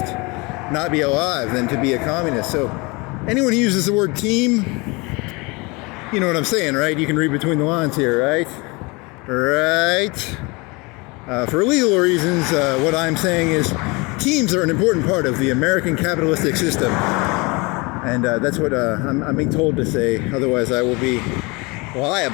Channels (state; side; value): quieter; right; 26.7 dB